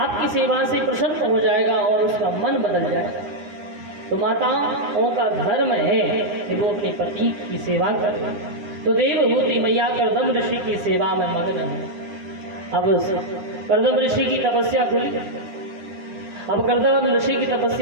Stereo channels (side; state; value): left; late; 9.9 ms